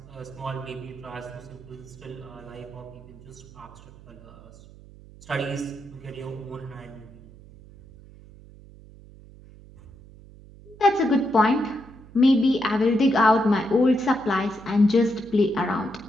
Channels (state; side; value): noise; right; hum, 21 dB below the sound